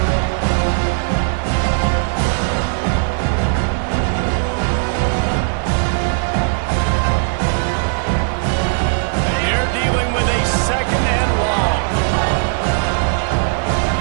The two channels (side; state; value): left; silent; digital silence